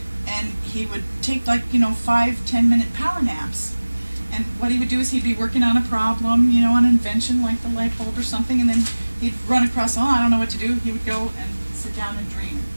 And he would take 5-10 minute power naps. And what he would do is he'd be working on a problem, an invention like the light bulb or something, and then he'd run across, I don't know what to do. He would go and sit down and dream.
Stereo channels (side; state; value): both; inverted; correlation -1.00